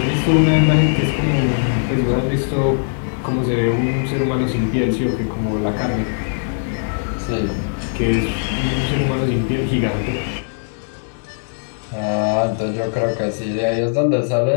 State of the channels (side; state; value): right; silent; digital silence